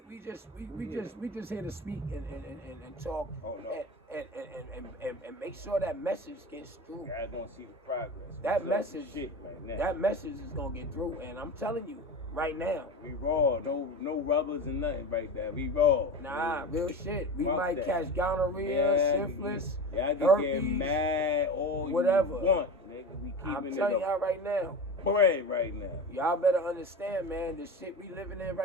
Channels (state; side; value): normal; both; correlation 0.28